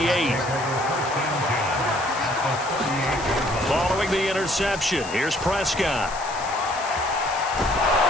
Following the interception, here's Prescott.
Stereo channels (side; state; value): left; noise; hiss, 13 dB below the sound